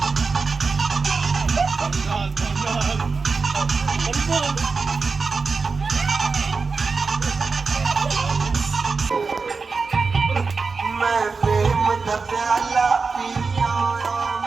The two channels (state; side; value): quieter; left; 4.5 dB